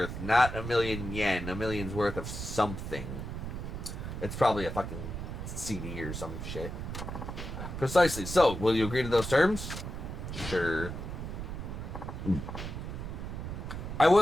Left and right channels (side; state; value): right; noise; rumble, 6 dB below the sound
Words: not 1,000,000 yen. $1 million's worth of something. It's probably a fucking CD or some shit. Precisely. So, will you agree to those terms? Sure. I